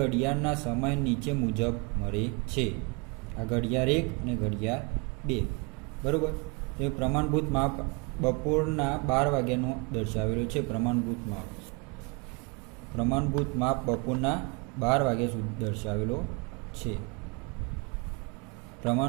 સમય નીચે મુજબ મળે છે. આ ઘડિયાળ 1 અને ઘડિયાળ 2, બરાબર. એ પ્રમાણભૂત માપ બપોરના 12 વાગ્યાનો દર્શાવેલો છે. પ્રમાણભૂત માપ બપોરના 12 વાગ્યા સુધી દર્શાવેલો છે.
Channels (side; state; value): left; quieter; 31.1 dB